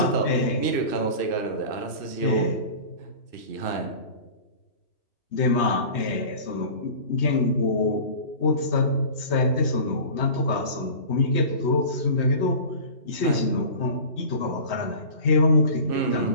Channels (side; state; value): right; late; 3.2 ms